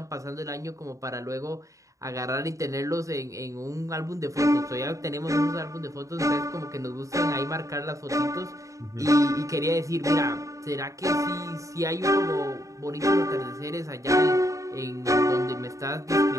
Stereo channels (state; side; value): late; left; 0.16 ms